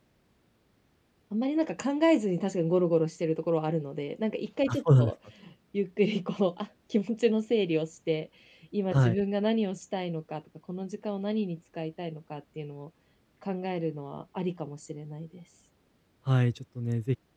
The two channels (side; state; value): both; identical; correlation 1.00